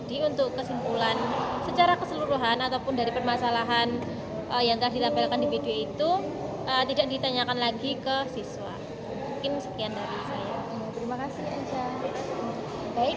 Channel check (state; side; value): identical; both; correlation 1.00